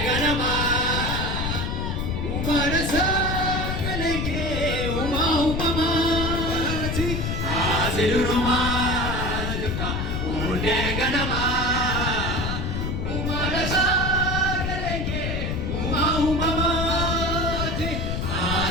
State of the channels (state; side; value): noise; left; rumble, 1 dB below the sound